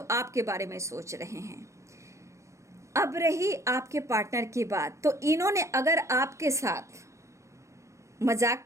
आपके बारे में सोच रहे हैं। अब रही आपके पार्टनर की बात, तो इन्होंने अगर आपके साथ मजाक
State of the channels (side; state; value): left; late; 0.15 ms